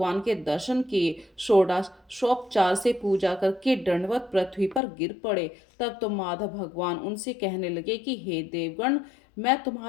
के दर्शन किए, षोडशोपचार से पूजा करके दंडवत पृथ्वी पर गिर पड़े। तब तो माधव भगवान उनसे कहने लगे कि हे देवगण, मैं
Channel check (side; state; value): right; drops out; at 4.8 s